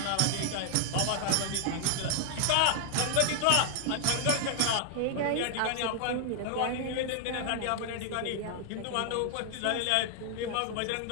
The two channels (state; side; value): different; both; correlation 0.00